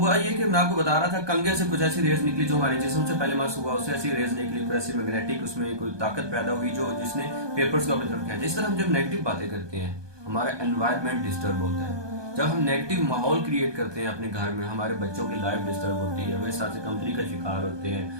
ये कि मैं आपको बता रहा था, कंगे से कुछ ऐसी रेज निकली जो हमारे जिस्म से पहले मास हुआ, उससे ऐसी रेज निकली, कोई ऐसी मैग्नेटिक उसमें कोई ताकत पैदा हुई जो जिसने पेपर्स को अपनी तरफ खींचा। इस तरह हम जब नेगेटिव बातें करते हैं हमारा एनवायरनमेंट डिस्टर्ब होता है। जब हम नेगेटिव माहौल क्रिएट करते हैं अपने घर में, हमारे बच्चों की लाइफ डिस्टर्ब होती है, वे साथ से कमजोरी का शिकार होते हैं,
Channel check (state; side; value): late; left; 1.2 ms